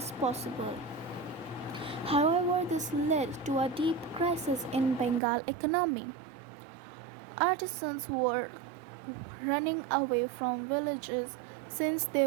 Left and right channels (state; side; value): drops out; left; at 5.2 s